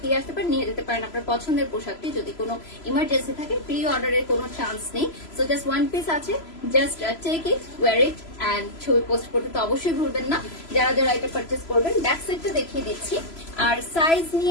আসতে পারেন, নিয়ে যেতে পারেন আপনার পছন্দের পোশাকটি। যদি কোনো ইমার্জেন্সি থাকে, প্রি অর্ডারের কোনো চান্স নেই। সো জাস্ট ওয়ান পিস আছে, just take it, wear it and ছবি পোস্ট করতে তো অবশ্যই ভুলবেন না যারা যারা এটা পারচেস করবেন। ব্যাক সাইডটা দেখিয়ে দিচ্ছি। আর সাইজ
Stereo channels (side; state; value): right; late; 3.0 ms